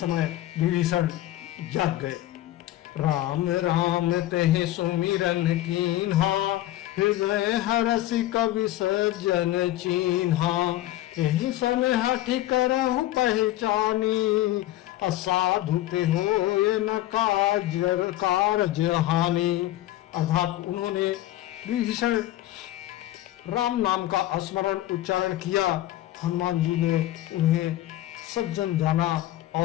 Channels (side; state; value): right; quieter; 14.9 dB